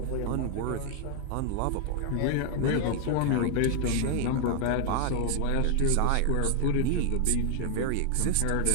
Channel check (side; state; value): both; different; correlation 0.00